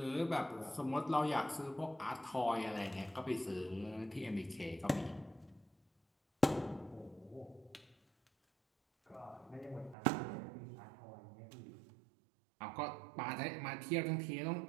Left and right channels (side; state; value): left; drops out; at 10.0 s